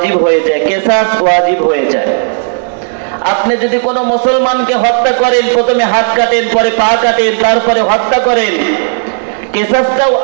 হয়ে যায়, কিসাস ওয়াজিব হয়ে যায়। আপনি যদি কোনো মুসলমানকে হত্যা করেন, প্রথমে হাত কাটেন, পরে পা কাটেন, তারপরে হত্যা করেন, কিসাসটাও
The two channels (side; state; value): left; silent; digital silence